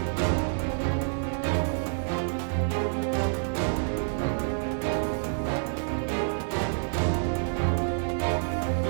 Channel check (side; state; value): left; silent; digital silence